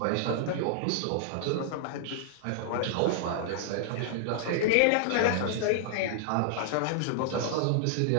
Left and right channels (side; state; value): both; different; correlation -0.01